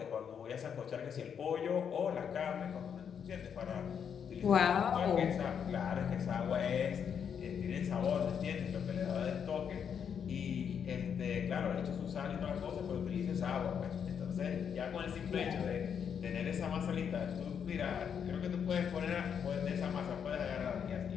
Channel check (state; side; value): quieter; right; 7.6 dB